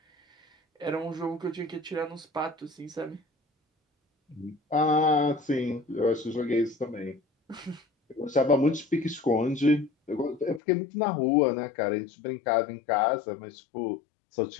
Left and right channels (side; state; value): right; drops out; at 10.6 s